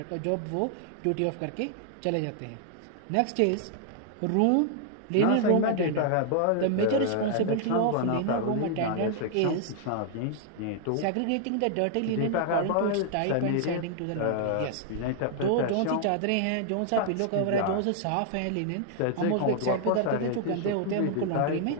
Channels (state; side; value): different; both; correlation 0.00